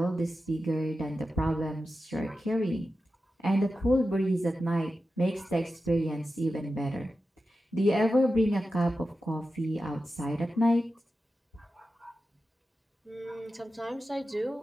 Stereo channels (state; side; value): normal; both; correlation 0.92